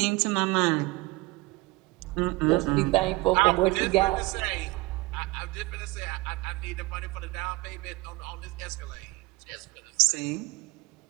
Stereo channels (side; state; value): left; quieter; 22.3 dB